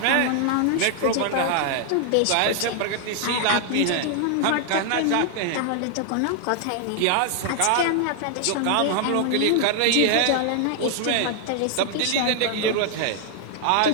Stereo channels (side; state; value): both; different; correlation 0.00